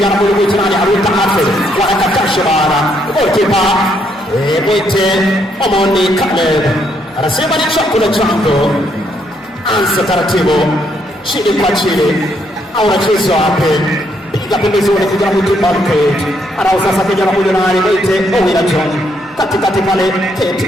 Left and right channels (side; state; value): both; normal; correlation 0.73